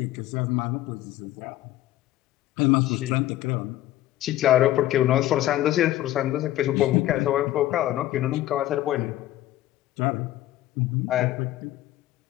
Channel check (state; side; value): quieter; right; 14.5 dB